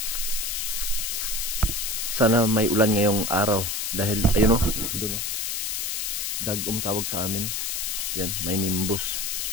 Sana may ulan ngayong araw dahil ayun oh, doon oh. Dagom tawag sa amin. Yan, may nimbus.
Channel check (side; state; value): left; noise; hiss, 1 dB below the sound